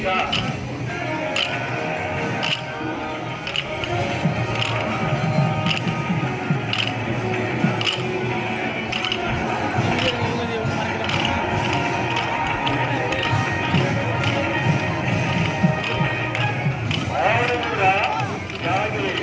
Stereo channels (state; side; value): identical; both; correlation 1.00